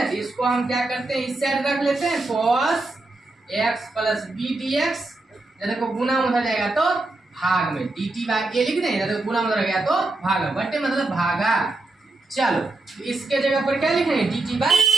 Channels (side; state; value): left; quieter; 3.0 dB